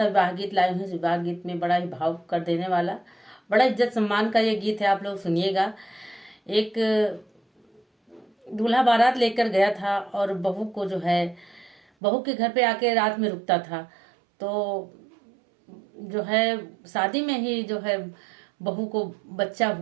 विवाह गीत लाई हूँ। विवाह गीत में बड़ा ही भाव कर देने वाला, बड़ा इज्जत सम्मान का ये गीत है। आप लोग सुनिएगा। एक दूल्हा बारात लेकर गया था और बहू को जो है, बहू के घर पे आके रात में रुकता था। तो जो है शादी में ही जो है बहू को बच्चा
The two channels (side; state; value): left; drops out; at 11.8 s